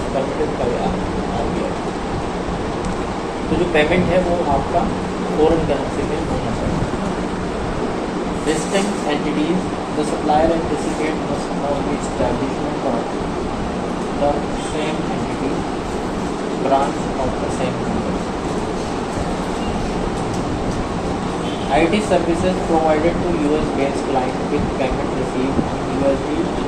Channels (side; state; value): both; identical; correlation 1.00